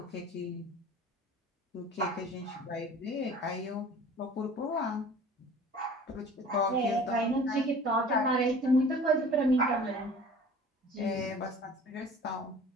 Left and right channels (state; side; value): normal; both; correlation 0.45